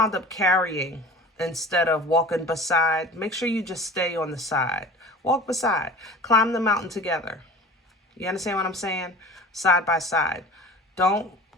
up carrying instead of walking beside. Make sure you just stay on the side. Walk beside. Climb the mountain together. You understand what I'm saying? Side by side. Don't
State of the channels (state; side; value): normal; both; correlation 0.39